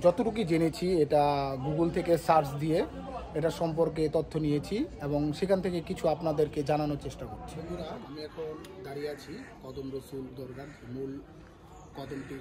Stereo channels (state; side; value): identical; both; correlation 1.00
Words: যতটুকু জেনেছি এটা গুগল থেকে সার্চ দিয়ে এটা সম্পর্কে তথ্য নিয়েছি এবং সেখান থেকে কিছু আপনাদেরকে জানানোর চেষ্টা করছি। বন্ধুরা, আমি এখন দাঁড়িয়ে আছি কদম রসুল দরগার মূল কদমটি